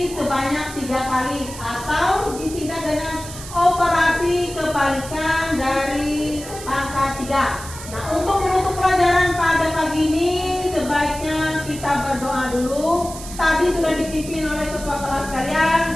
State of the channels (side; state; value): right; noise; hiss, 13 dB below the sound